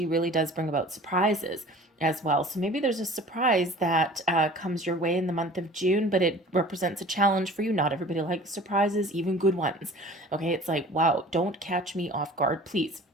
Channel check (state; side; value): normal; both; correlation 0.44